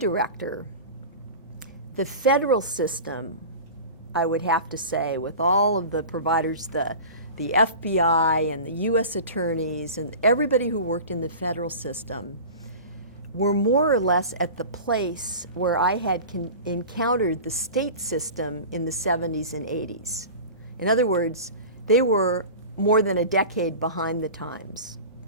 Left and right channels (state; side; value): inverted; both; correlation -0.35